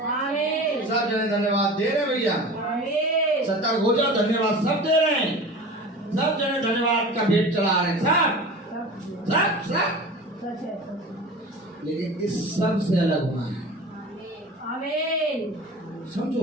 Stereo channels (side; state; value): both; normal; correlation 0.36